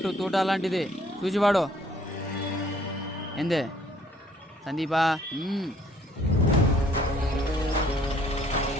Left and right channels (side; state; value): both; normal; correlation 0.61